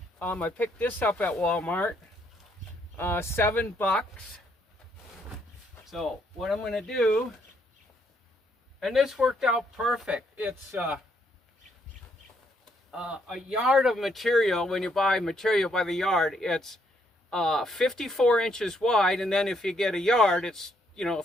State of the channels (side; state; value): both; normal; correlation 0.72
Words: I picked this up at Walmart, $7. So what I'm going to do, and this worked out perfect. It's a yard of material. When you buy material by the yard, it's 54 inches wide, and then if you get a yard, it's, you know,